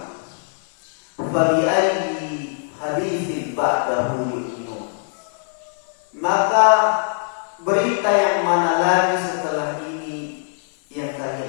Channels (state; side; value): silent; right; digital silence